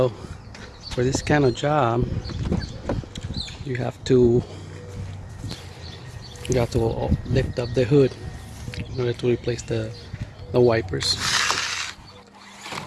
For this kind of job, you have to lift up the hood in order to replace the wipers.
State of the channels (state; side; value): identical; both; correlation 1.00